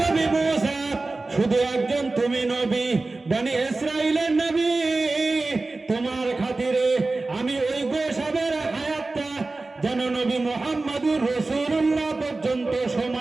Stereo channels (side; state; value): left; quieter; 3.3 dB